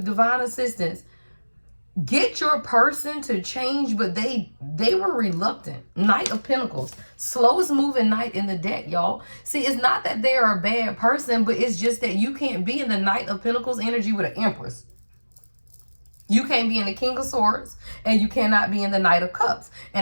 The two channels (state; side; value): inverted; both; correlation -1.00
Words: assistance. get your person to change, but they were reluctant. Knight of Pentacles, slowest moving knight in the deck, y'all. See, it's not that they are a bad person, but it's just that you can't be in the Knight of Pentacles energy with an Empress. You can't be in the King of Swords, and you cannot be in the Knight of Cups.